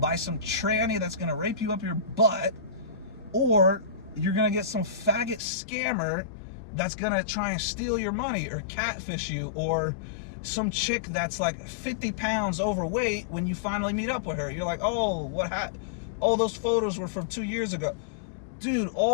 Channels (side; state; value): right; drops out; at 5.4 s